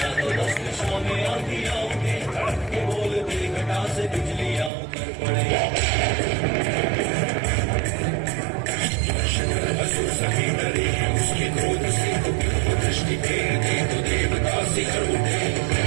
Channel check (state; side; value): drops out; left; at 4.7 s